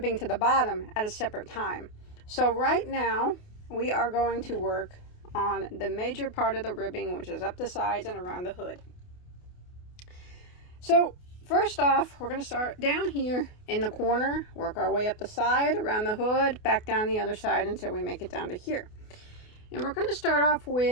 to the bottom at a separate time. So right now we are going to work on the major part of the ribbing, which is up the sides and around the hood. So first off, we're going to start down here in the corner, work our way up the side, around the hood, back down the other side until we make it down to here. And we're going to start off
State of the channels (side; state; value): right; late; 28 ms